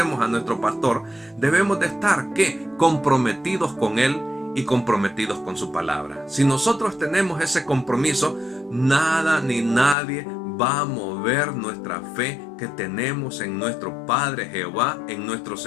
a nuestro pastor, debemos de estar, ¿qué? Comprometidos con Él y comprometidos con su palabra. Si nosotros tenemos ese compromiso, nada ni nadie va a mover nuestra fe que tenemos en nuestro Padre Jehová, en nuestro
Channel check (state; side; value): drops out; right; at 10.0 s